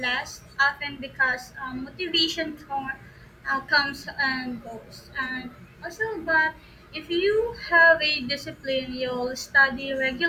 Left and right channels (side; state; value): both; identical; correlation 1.00